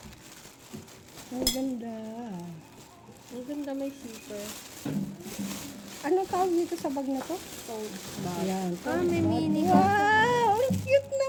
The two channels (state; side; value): identical; both; correlation 1.00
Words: Ang ganda. Ang ganda, may zipper. Anong tawag dito sa bag na to? Tote bag. Ayan. May mini. Wow! Ang cute